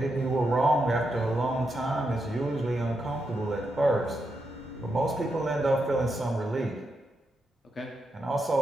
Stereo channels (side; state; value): both; normal; correlation 0.84